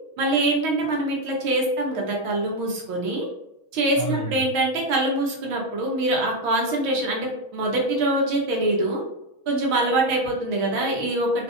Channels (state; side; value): late; left; 6.3 ms